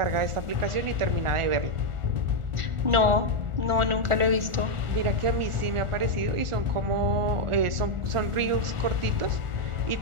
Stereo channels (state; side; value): late; left; 1.4 ms